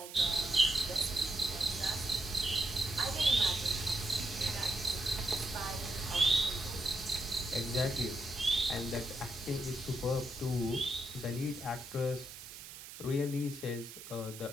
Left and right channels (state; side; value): noise; right; hiss, 13 dB below the sound